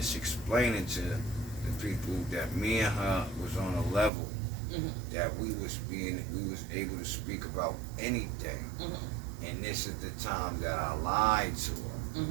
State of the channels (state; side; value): drops out; left; at 4.1 s